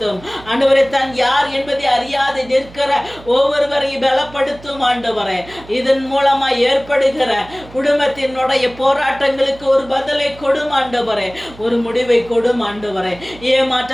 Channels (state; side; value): noise; right; hum, 20 dB below the sound